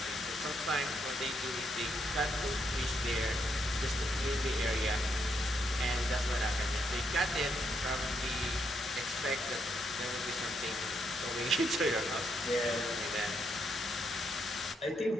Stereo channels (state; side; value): normal; both; correlation 0.77